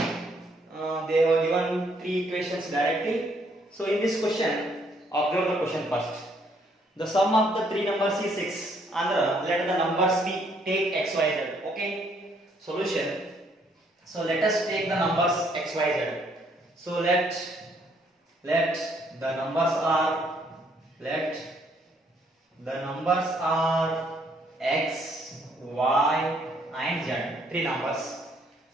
they were given three equations directly. So in this question, observe the question first. The sum of the three numbers is 6. And let the numbers be take x, y, z. Okay. Solution. So let us take the numbers x, y, z. So let the numbers are x, y, and z. Three numbers.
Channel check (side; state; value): both; normal; correlation 0.68